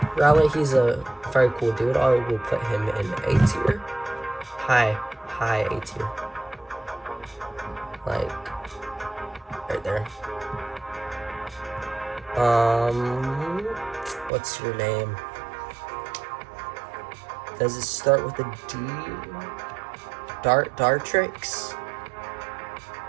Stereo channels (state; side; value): drops out; left; at 14.3 s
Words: Rowlet, he's a very cool dude. I will put him in A tier. High A tier. Like, right there. What's your name? Does it start with a D? Dartrix?